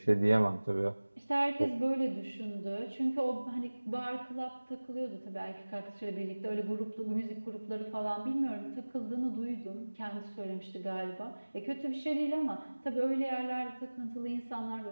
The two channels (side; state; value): both; inverted; correlation -1.00